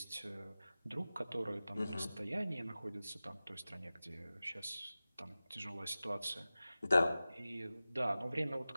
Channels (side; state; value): both; inverted; correlation -0.96